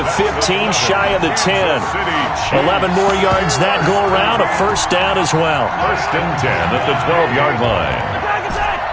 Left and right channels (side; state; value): both; identical; correlation 1.00